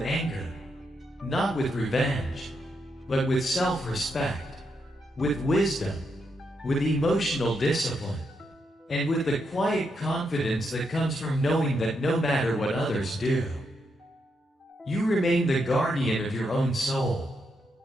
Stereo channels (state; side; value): normal; both; correlation 0.81